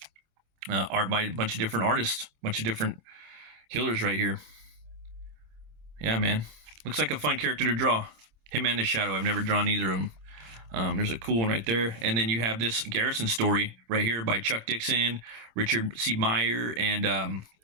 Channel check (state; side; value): late; left; 27 ms